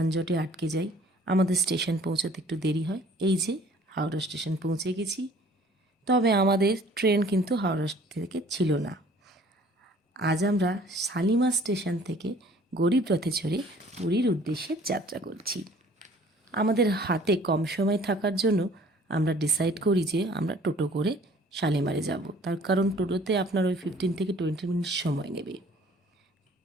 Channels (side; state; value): both; normal; correlation 0.54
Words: আটকে যাই, আমাদের স্টেশন পৌঁছাতে একটু দেরি হয়। এই যে হাওড়া স্টেশন পৌঁছে গেছি, তবে আমাদের ট্রেন কিন্তু হাওড়া থেকে ছিল না। আজ আমরা শালিমার স্টেশন থেকে গরিব রথে চড়ে পুরীর উদ্দেশ্যে যাত্রা করছি। আমাদের হাতে কম সময় থাকার জন্য আমরা ডিসাইড করি যে আমরা টোটো করে শালিমারে যাব। তার কারণ টোটোতে আপনার ওই 15 থেকে 20 মিনিট সময় নেবে।